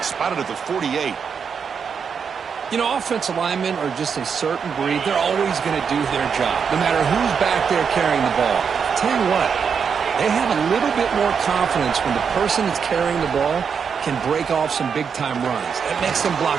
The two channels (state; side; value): quieter; left; 6.5 dB